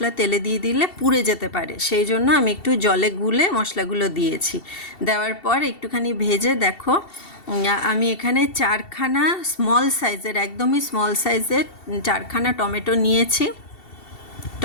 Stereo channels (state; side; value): late; right; 2.7 ms